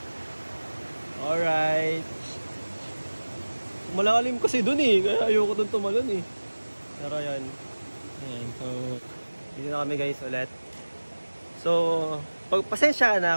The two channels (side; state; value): both; inverted; correlation -1.00